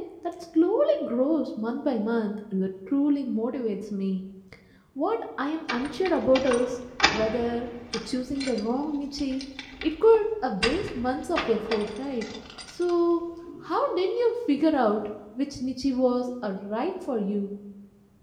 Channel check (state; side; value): identical; both; correlation 1.00